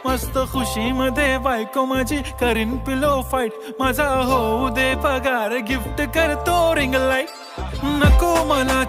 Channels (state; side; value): identical; both; correlation 1.00